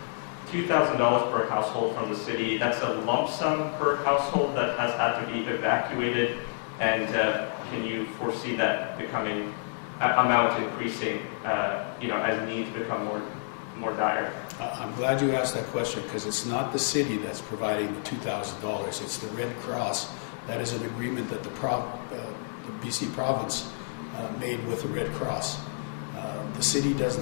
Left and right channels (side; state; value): right; silent; digital silence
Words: $2,000 per household from the city. That's a lump sum per household that has had to be evacuated. And can you foresee that becoming amount increasing, as needs become more dire? I'm glad you asked that question, because it's not the city that's providing the $2,000. It's the Red Cross. That is an agreement that the BC province made with the Red Cross. The city doesn't